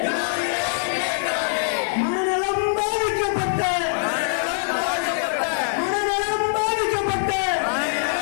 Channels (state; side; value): silent; right; digital silence